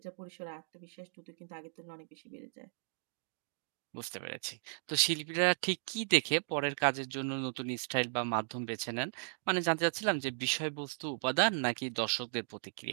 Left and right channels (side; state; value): left; silent; digital silence